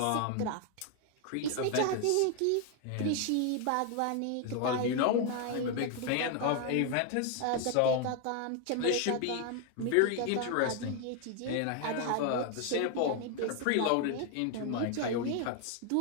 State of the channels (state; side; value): different; both; correlation 0.01